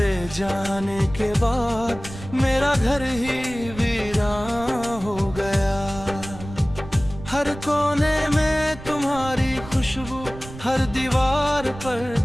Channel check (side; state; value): right; noise; rumble, 14 dB below the sound